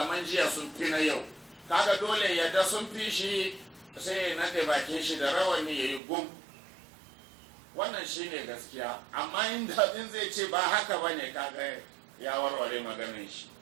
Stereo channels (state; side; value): drops out; left; at 6.0 s